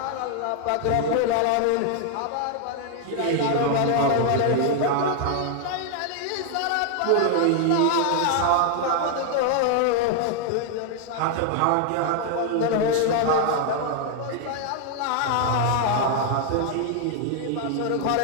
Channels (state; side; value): different; both; correlation 0.00